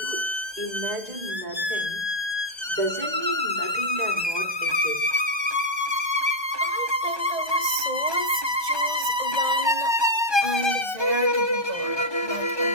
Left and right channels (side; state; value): left; late; 1.2 ms